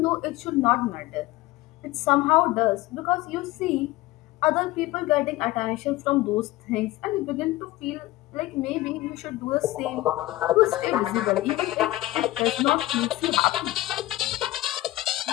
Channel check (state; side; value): quieter; right; 17.5 dB